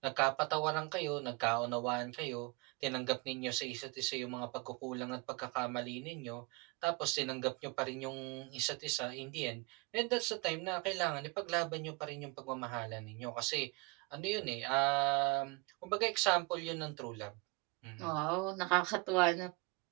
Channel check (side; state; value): left; quieter; 27.8 dB